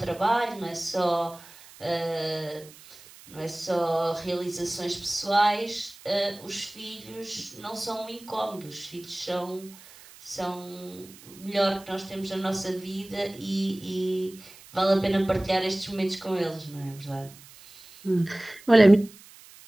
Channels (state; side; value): noise; right; hiss, 21 dB below the sound